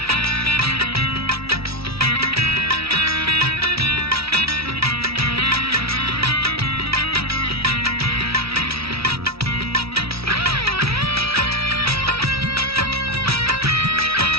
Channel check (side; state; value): left; late; 0.76 ms